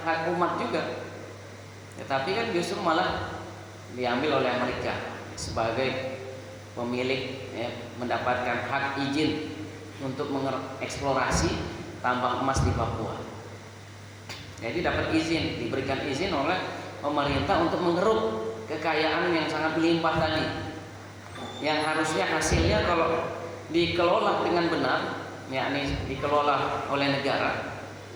hak umat juga, ya, tapi kan justru malah diambil oleh Amerika sebagai pemilik, ya, mendapatkan hak izin untuk mengeksplorasi tambang emas di Papua. Jadi dapat izin, diberikan izin oleh pemerintah untuk mengeruk kekayaan yang sangat melimpah tadi, yang harusnya hasilnya kalau dikelola dengan benar, yakni dikelola oleh negara,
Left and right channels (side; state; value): both; identical; correlation 1.00